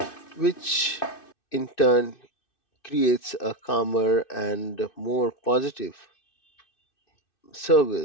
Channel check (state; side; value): late; right; 2.6 ms